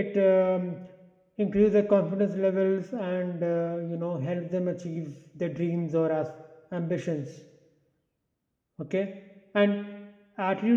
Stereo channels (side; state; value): both; identical; correlation 1.00